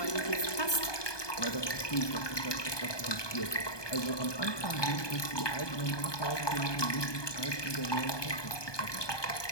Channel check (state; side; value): late; right; 1.2 ms